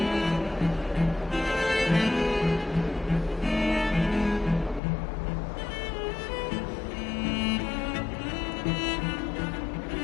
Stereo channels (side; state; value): right; drops out; at 4.8 s